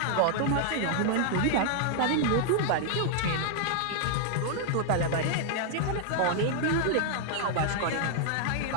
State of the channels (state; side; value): different; both; correlation -0.01